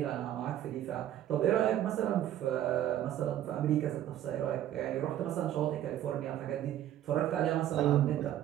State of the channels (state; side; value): quieter; left; 12.0 dB